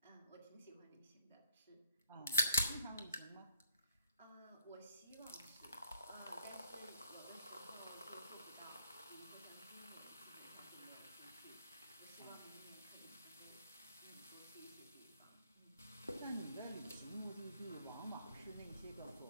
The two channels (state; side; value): inverted; both; correlation -0.66